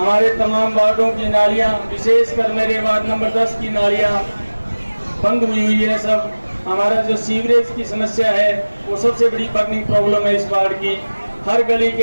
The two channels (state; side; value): inverted; both; correlation -1.00